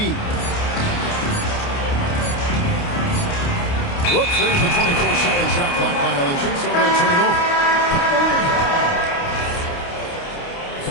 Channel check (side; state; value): right; late; 29 ms